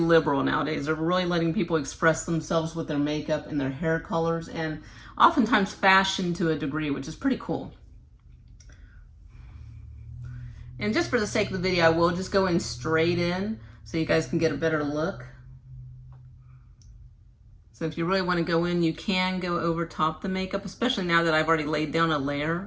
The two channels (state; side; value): identical; both; correlation 1.00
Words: nowadays. They're really letting people express themselves with their makeup and their hair colors, and oftentimes fashion to a degree, which is pretty cool. And just for the sake of the video, I will just go in straight in so you guys can get a better look. So if you really want to go in, you can go over top the makeup, especially now that I've already laid down a